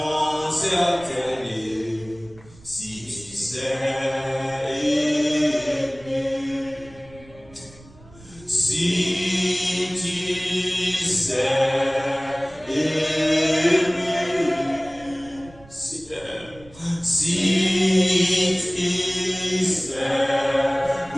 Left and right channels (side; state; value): right; noise; rumble, 23 dB below the sound